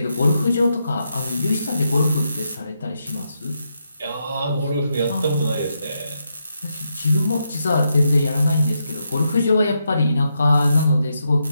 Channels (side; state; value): both; inverted; correlation -0.83